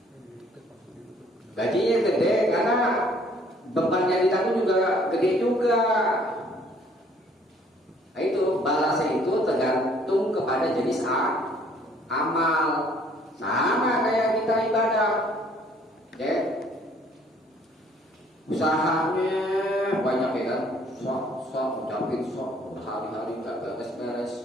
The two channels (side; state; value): both; normal; correlation 0.60